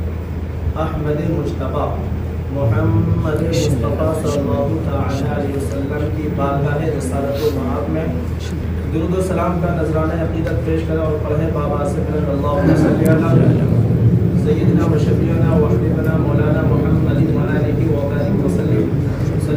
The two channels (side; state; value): both; identical; correlation 1.00